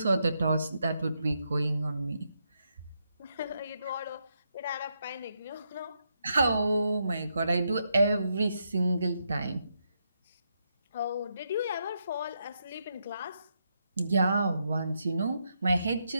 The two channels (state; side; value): inverted; both; correlation -0.81